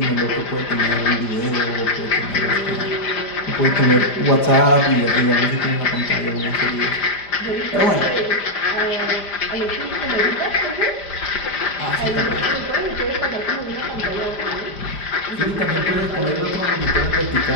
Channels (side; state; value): right; late; 5.0 ms